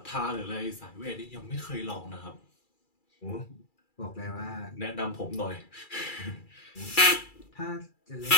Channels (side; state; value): right; late; 2.3 ms